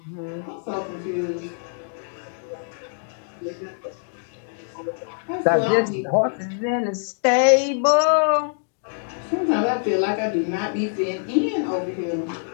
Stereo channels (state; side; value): silent; right; digital silence